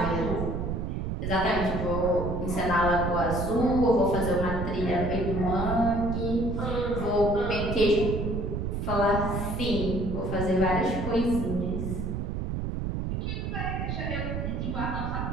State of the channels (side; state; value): right; noise; rumble, 2 dB below the sound